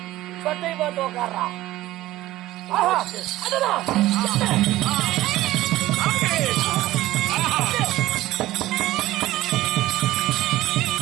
பட்டை பார்த்து உட்கார்றா.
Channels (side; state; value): left; quieter; 16.1 dB